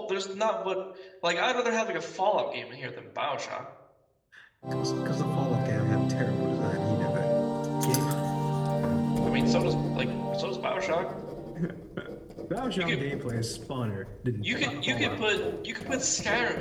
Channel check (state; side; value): identical; both; correlation 1.00